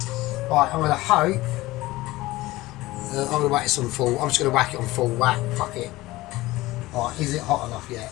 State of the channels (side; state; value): right; quieter; 18.7 dB